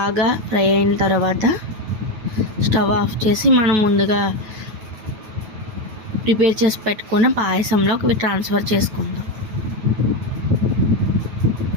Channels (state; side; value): late; left; 9.2 ms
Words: ఫ్రై అయిన తర్వాత స్టవ్ ఆఫ్ చేసి మనం ముందుగా ప్రిపేర్ చేసి పెట్టుకున్న పాయసంలోకి ఇవి ట్రాన్స్ఫర్ చేసుకుందాం.